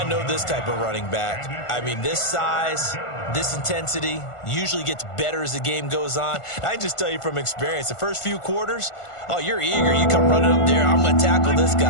know this type of running back. I mean, this size, this intensity usually gets better as the game goes on. I can just tell you from experience, the first few quarters, oh, you're eager. You come running up there, I'm going to tackle this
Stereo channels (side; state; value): right; late; 1.5 ms